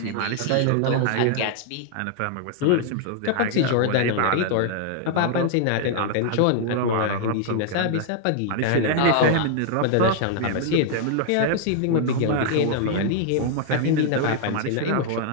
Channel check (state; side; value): different; both; correlation 0.00